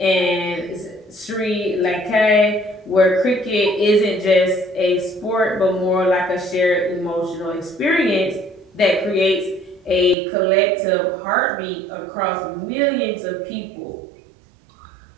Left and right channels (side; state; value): left; drops out; at 10.2 s